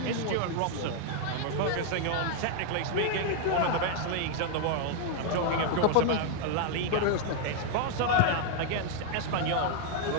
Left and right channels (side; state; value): both; different; correlation 0.00